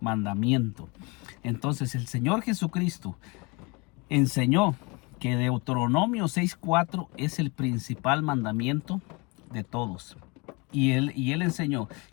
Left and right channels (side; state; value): right; quieter; 28.2 dB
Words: mandamiento. Entonces el Señor Jesucristo enseñó que Deuteronomio 6:4 es el principal mandamiento de todos. Y él enseñó